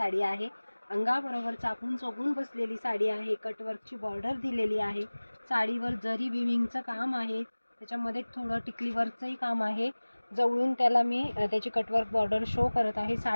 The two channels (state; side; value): inverted; both; correlation -1.00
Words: आहे। अंगाबरोबर चापून चोगून बसलेली साडी आहे। कटवर्कची बॉर्डर दिलेली आहे। साडीवर जरी विविंगचं काम आहे, त्याच्यामध्ये थोडं टिकली वर्कचंही काम आहे। जवळून त्याला मी त्याची कटवर्क बॉर्डर शो करत आहे